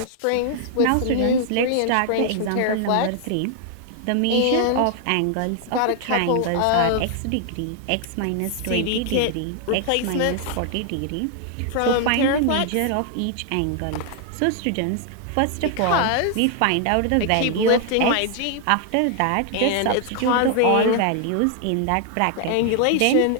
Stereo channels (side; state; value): both; different; correlation 0.00